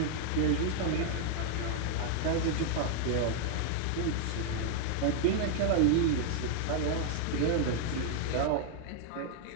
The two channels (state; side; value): different; both; correlation 0.00